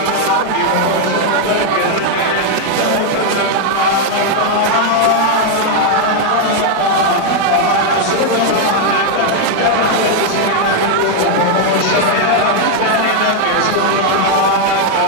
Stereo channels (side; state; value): both; different; correlation 0.00